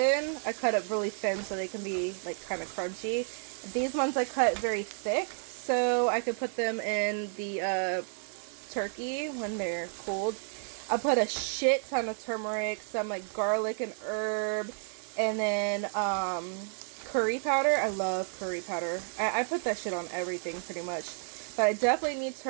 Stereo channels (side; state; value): left; silent; 57 dB below the other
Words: I cut it really thin so they can be like kind of crunchy. These ones I cut very thick so I could put them in the turkey when they're cooled. I put a shit ton of turmeric, some like garlic and herb, and then curry powder. I love curry powder. I put that shit on everything pretty much. But I definitely need